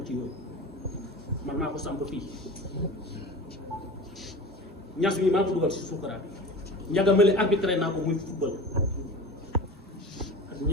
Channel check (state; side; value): normal; both; correlation 0.35